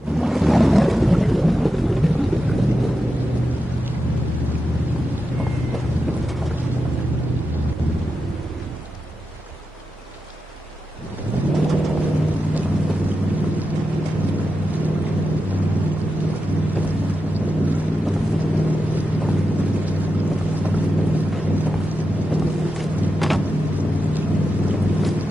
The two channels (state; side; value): normal; both; correlation 0.89